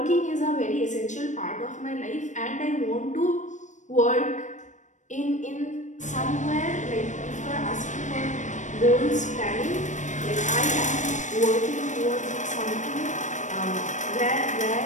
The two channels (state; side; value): late; right; 0.35 ms